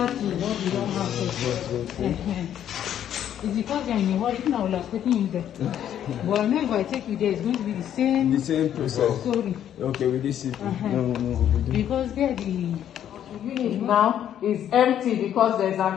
to what we don't have here. It's because you're in a hurry. Now I would have taken you there. But I know if I take you there, it's going to be the same process. Story. Okay, with this no. Because there the unit now is empty because there's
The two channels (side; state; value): right; quieter; 10.3 dB